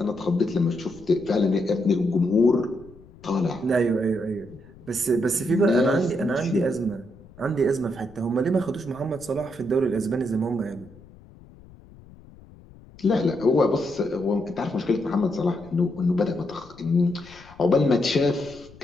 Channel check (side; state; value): left; noise; rumble, 22 dB below the sound